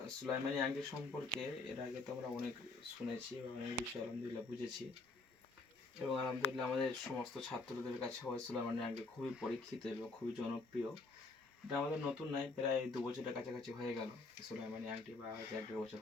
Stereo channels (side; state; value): right; quieter; 3.5 dB